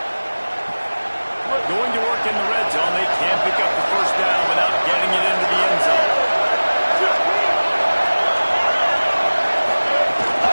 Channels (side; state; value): both; inverted; correlation -1.00